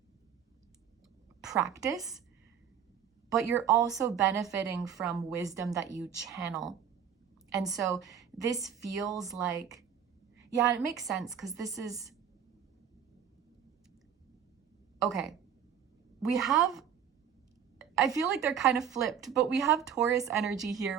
practice, but you're also benefiting from wisdom that you channel. And so this feels like, yeah, it makes sense because this is, okay, we have, I feel like they're kind of flipped, but we have Taurus energy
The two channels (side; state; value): left; quieter; 8.2 dB